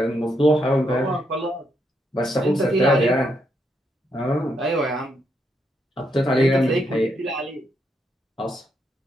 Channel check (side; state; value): both; normal; correlation 0.78